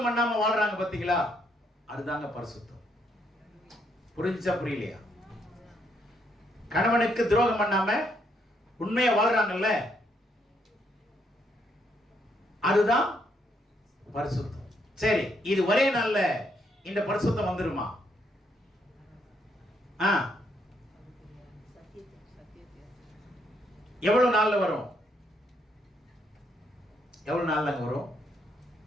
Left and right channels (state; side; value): normal; both; correlation 0.74